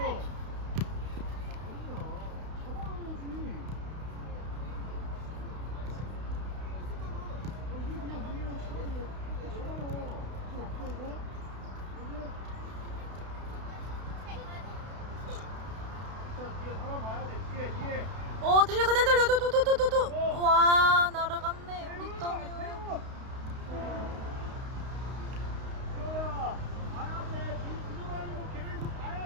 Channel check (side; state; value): left; late; 32 ms